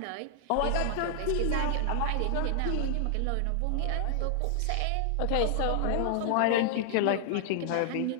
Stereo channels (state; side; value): different; both; correlation -0.01